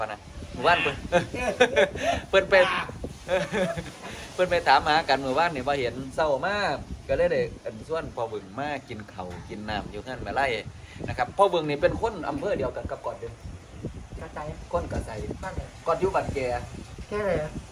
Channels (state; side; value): identical; both; correlation 1.00